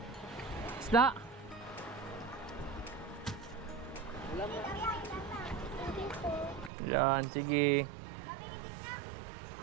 Isda? Yan, sige.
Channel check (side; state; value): left; drops out; at 6.7 s